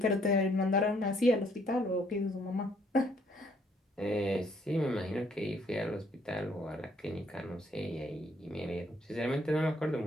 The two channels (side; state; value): both; normal; correlation 0.66